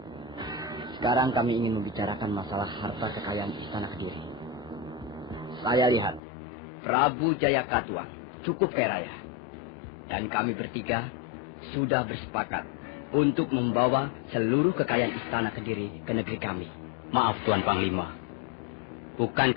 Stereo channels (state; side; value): drops out; right; at 6.2 s